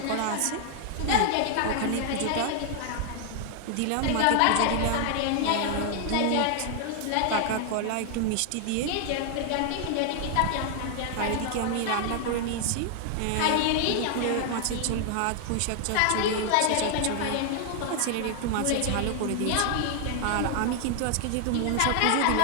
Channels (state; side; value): different; both; correlation 0.00